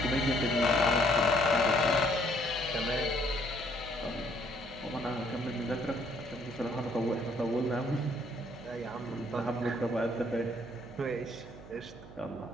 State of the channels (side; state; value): right; noise; hum, 16 dB below the sound